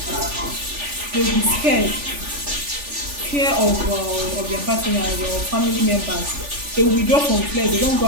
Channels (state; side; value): late; left; 3.4 ms